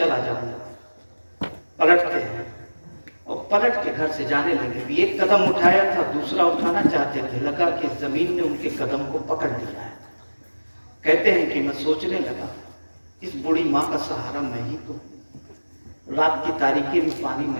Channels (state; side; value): inverted; both; correlation -1.00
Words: جاؤں گا۔ پلٹتے ہیں اور پلٹ کے گھر سے جانے لگے، بھی ایک قدم اٹھایا تھا، دوسرا اٹھانا چاہتے تھے، لگا کہ زمین نے ان کے قدم کو پکڑ لیا ہے۔ کہتے ہیں کہ میں سوچنے لگا اس بوڑھی ماں کا سہارا میں ہی تو، رات کی تاریکی میں پانی